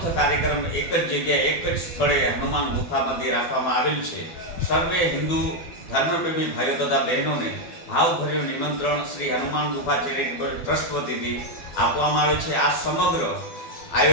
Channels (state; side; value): late; right; 12 ms